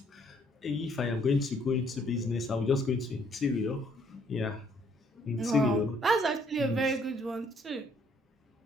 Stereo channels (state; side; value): normal; both; correlation 0.65